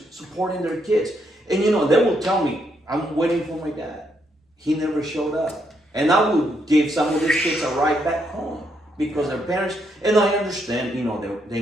supporting their kids? And they will tell me, I'm waiting for my dad. He never showed up. And I would give some of these kids a ride back home because their parents, and I understand, they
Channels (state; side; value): normal; both; correlation 0.76